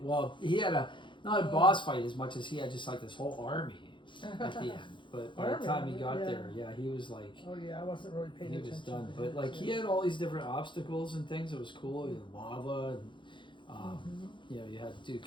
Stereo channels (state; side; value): late; right; 0.23 ms